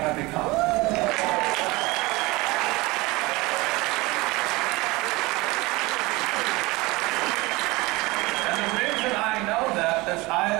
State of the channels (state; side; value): quieter; left; 22.5 dB